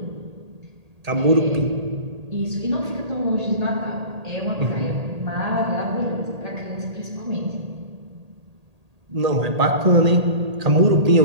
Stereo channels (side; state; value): left; late; 1.8 ms